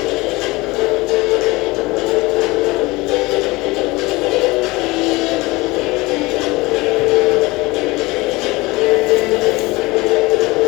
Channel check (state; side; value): quieter; right; 22.3 dB